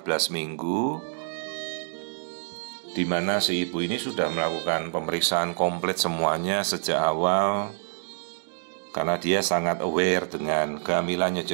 minggu, di mana si ibu ini sudah melakukan pemeriksaan komplit semuanya sejak awal, karena dia sangat aware dengan kehamilannya,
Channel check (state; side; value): silent; left; digital silence